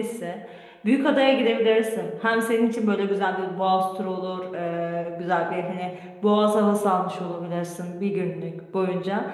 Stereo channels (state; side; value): identical; both; correlation 1.00